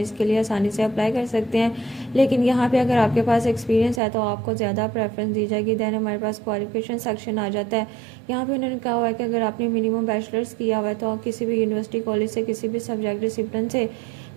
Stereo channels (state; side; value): drops out; left; at 4.0 s